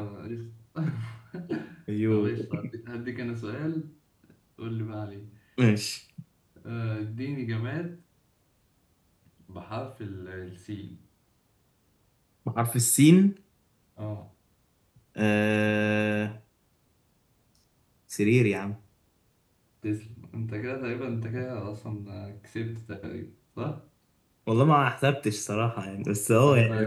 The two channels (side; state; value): both; identical; correlation 1.00